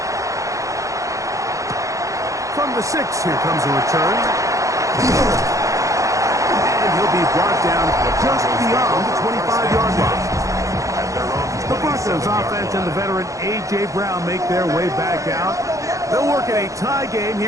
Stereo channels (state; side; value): late; left; 0.15 ms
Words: From the 6, here comes a return. And he'll be brought down just beyond the 25-yard line. The Broncos offense and the veteran A.J. Brown make their way back out. They'll work in a tie game